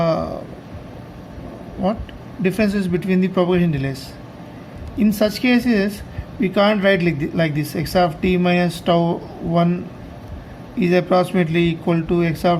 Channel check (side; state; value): both; identical; correlation 1.00